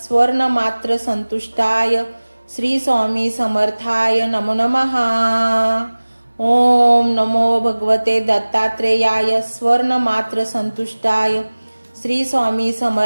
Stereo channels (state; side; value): inverted; both; correlation -1.00